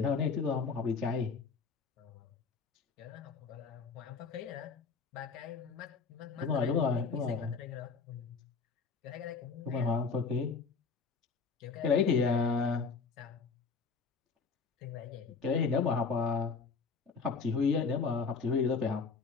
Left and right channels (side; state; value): right; quieter; 4.9 dB